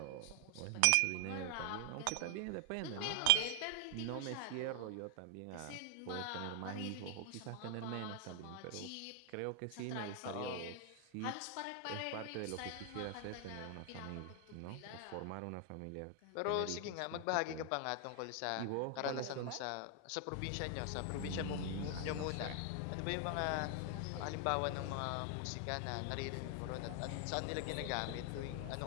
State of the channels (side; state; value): both; different; correlation 0.00